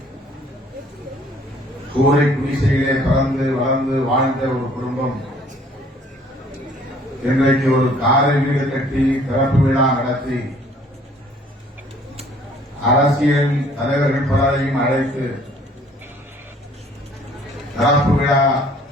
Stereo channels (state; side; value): normal; both; correlation 0.57